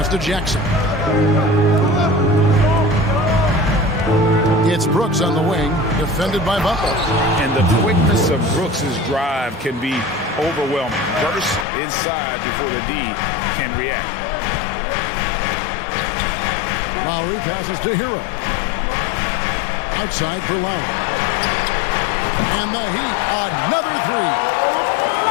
to Jackson. It's Brooks on the wing, defended by Butler. And the quickness of Brooks' drive can be overwhelming. Burst inside before the D can react. Lowry passes to Hero. Outside for Lowry. And the Heat, another three.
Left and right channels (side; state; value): right; drops out; at 11.7 s